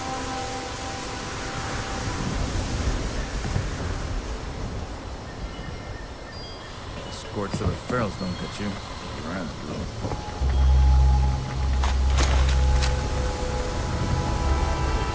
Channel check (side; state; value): both; identical; correlation 1.00